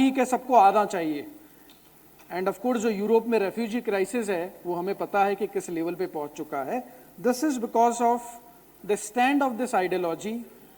है सबको आना चाहिए। एंड ऑफ कोर्स जो यूरोप में रेफ्यूजी क्राइसिस है वो हमें पता है कि किस लेवल पे पहुंच चुका है। This is because of the stand of this ideology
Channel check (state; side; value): identical; both; correlation 1.00